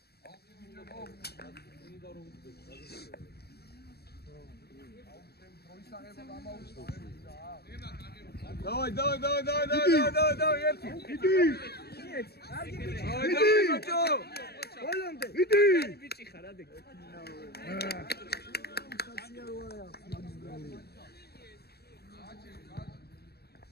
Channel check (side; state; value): right; late; 0.47 ms